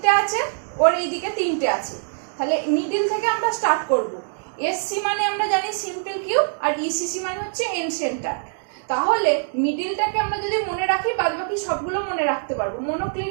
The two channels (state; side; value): silent; left; digital silence